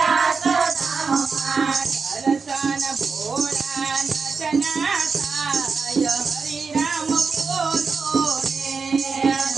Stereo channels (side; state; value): left; quieter; 5.0 dB